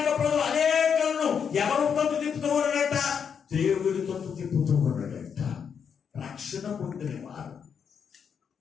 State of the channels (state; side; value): quieter; right; 7.1 dB